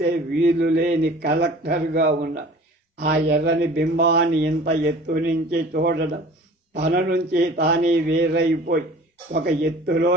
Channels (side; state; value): both; normal; correlation 0.45